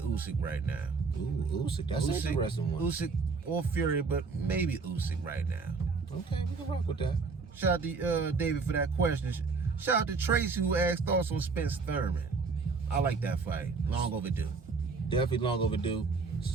right now. Ooh, Usyk. That's an interesting one. Usyk or Fury, but maybe Usyk right now. Okay, we can rock with that. Shout out to David for that question. Shout out to Tracy who asked thoughts on Spence Thurman. I like that fight. Long overdue. Definitely long overdue.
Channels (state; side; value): quieter; left; 4.6 dB